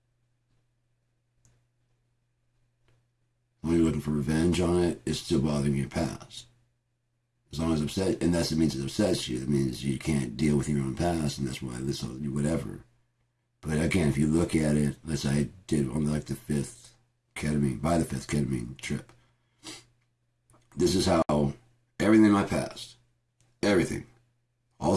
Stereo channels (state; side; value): identical; both; correlation 1.00